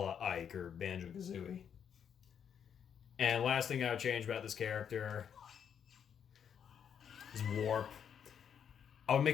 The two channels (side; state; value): right; quieter; 8.0 dB